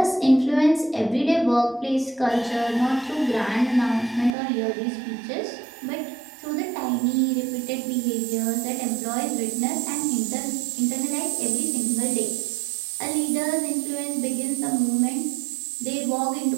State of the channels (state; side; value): drops out; left; at 4.3 s